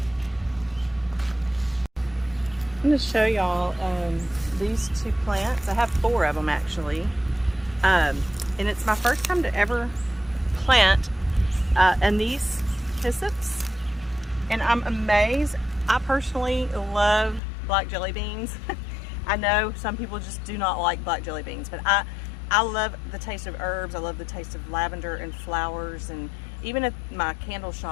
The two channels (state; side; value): drops out; right; at 17.4 s